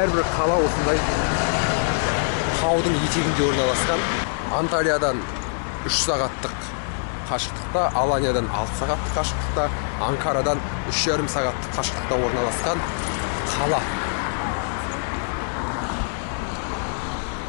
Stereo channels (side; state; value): right; silent; digital silence